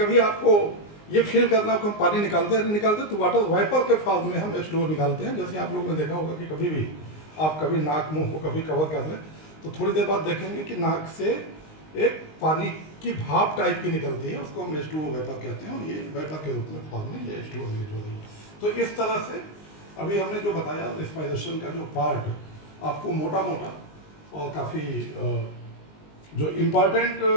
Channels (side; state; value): right; late; 19 ms